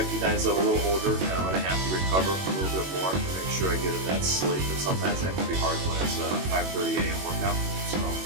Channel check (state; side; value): late; left; 21 ms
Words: I'm a little older and I'm going to have to recover a little bit more to make sure I get in that sleep. But sometimes that can be hard when it's a 5:30 a.m. workout. So